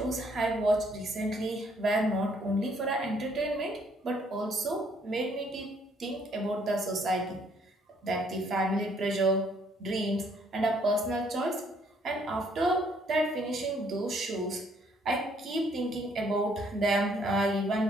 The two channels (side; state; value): both; normal; correlation 0.66